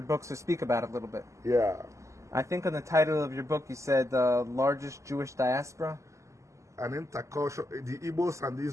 books speak about a little bit. Yeah. I think on the title of your book you said the largest Jewish diaspora. The Igbos and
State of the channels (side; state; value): left; late; 0.15 ms